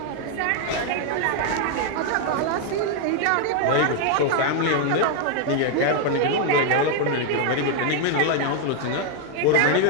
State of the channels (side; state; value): both; different; correlation 0.00